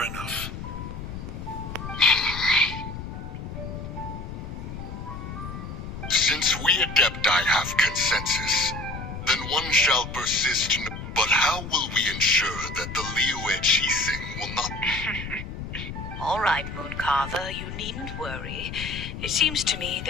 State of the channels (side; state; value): left; noise; rumble, 8 dB below the sound